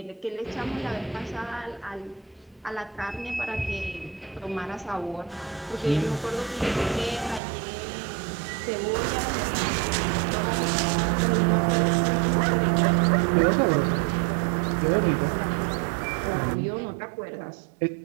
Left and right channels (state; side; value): drops out; left; at 7.4 s